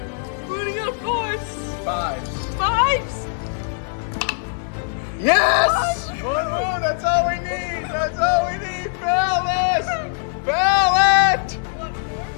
Putting up force. 5s. 5s. Yes! 1 wound, that's all we need. That's all we need. Fail this! Fail it! What force?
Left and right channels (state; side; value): silent; right; digital silence